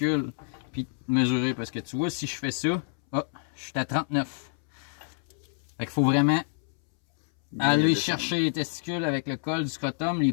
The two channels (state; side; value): silent; right; 59 dB below the other